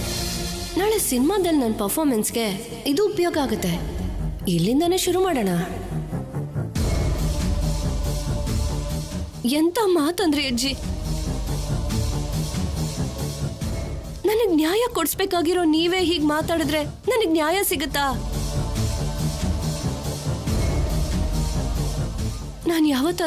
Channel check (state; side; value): identical; both; correlation 1.00